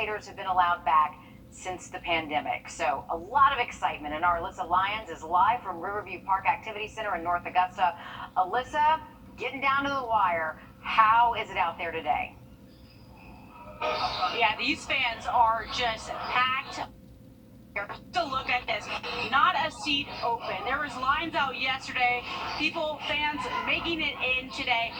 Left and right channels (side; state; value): both; identical; correlation 1.00